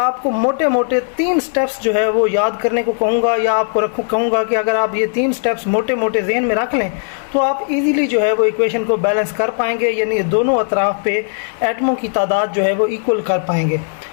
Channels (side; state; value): right; silent; 68 dB below the other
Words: मोटे मोटे 3 स्टेप्स जो है वो याद करने को कहूँगा, या आपको कहूँगा कि अगर आप ये 3 स्टेप्स मोटे मोटे जहन में रख लें तो आप इजीली जो है वो इक्वेशन को बैलेंस कर पाएंगे, यानी दोनों अतराफ़ पे एटमों की तादाद जो है वो इक्वल कर पाएंगे।